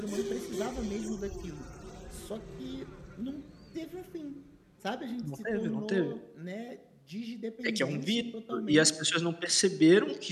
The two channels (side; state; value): both; identical; correlation 1.00